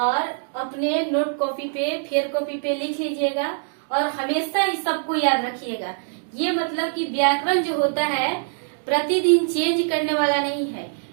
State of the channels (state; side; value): silent; left; digital silence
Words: अपने नोट कॉपी पे, फेयर कॉपी पे लिख लीजिएगा, और हमेशा इस सबको याद रखिएगा। ये मतलब कि व्याकरण जो होता है प्रतिदिन चेंज करने वाला नहीं है।